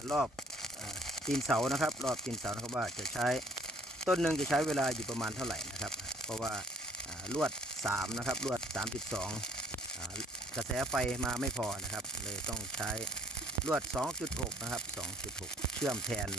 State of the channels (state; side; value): normal; both; correlation 0.57